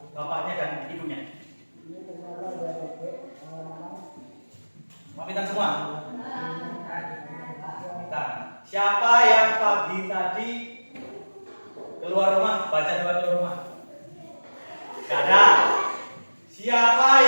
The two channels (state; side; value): inverted; both; correlation -1.00